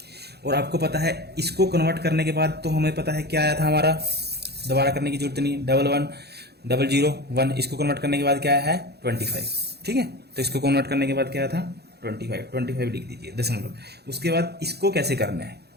और आपको पता है इसको कन्वर्ट करने के बाद तो हमें पता है क्या आया था हमारा, दोबारा करने की जरूरत नहीं, 11001, इसको कन्वर्ट करने के बाद क्या है 25, ठीक है। तो इसको कन्वर्ट करने के बाद क्या था 25 लिख दीजिए दशमलव। उसके बाद इसको कैसे करना है,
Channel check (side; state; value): left; late; 0.48 ms